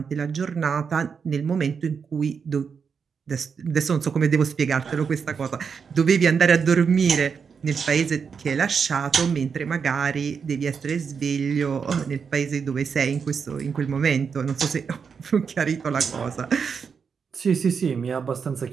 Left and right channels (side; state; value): left; quieter; 6.1 dB